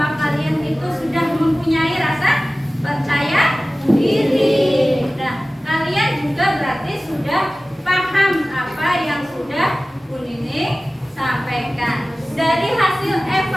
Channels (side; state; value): both; normal; correlation 0.97